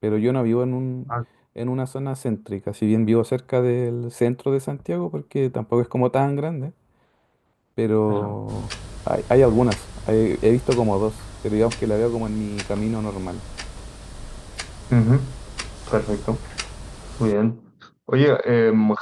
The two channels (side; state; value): both; identical; correlation 1.00